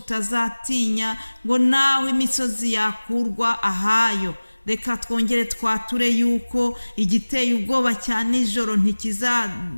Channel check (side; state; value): both; inverted; correlation -1.00